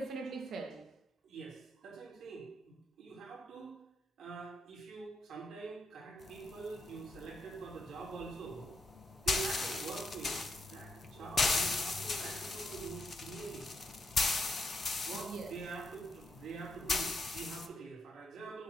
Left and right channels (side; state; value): both; normal; correlation 0.79